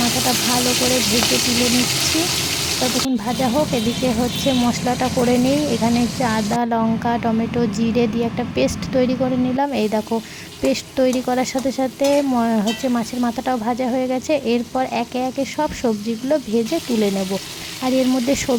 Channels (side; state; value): both; identical; correlation 1.00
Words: মাথাটা ভালো করে ভেজে তুলে নিচ্ছি। ততক্ষণ ভাজা হোক, এদিকে হচ্ছে মশলাটা করে নিই। এখানে হচ্ছে আদা, লঙ্কা, টমেটো, জিরে দিয়ে একটা পেস্ট তৈরি করে নিলাম। এই দেখো, পেস্ট তৈরি করার সাথে সাথে হচ্ছে মাছের মাথাটাও ভাজা হয়ে গেছে। এরপর একে একে সব সবজিগুলো ভেজে তুলে নেব। আর এর মধ্যে